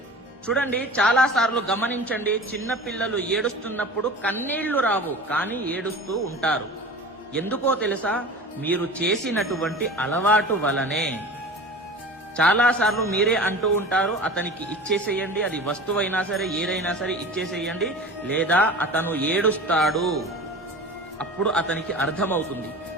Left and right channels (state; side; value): normal; both; correlation 0.36